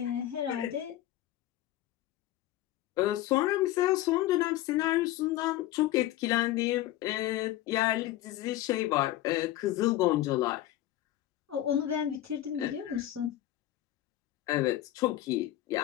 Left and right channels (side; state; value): right; quieter; 14.2 dB